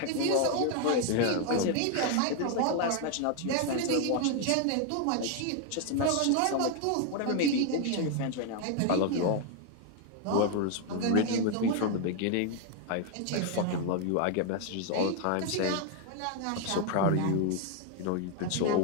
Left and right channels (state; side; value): different; both; correlation 0.01